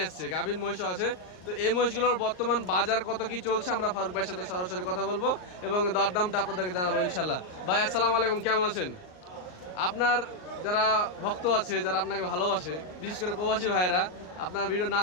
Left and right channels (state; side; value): late; right; 39 ms